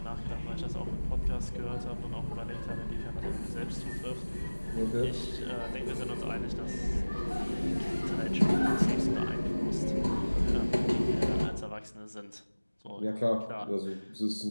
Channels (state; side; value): inverted; both; correlation -1.00